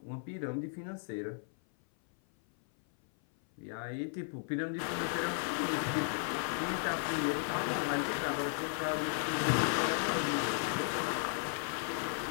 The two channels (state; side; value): silent; right; 54 dB below the other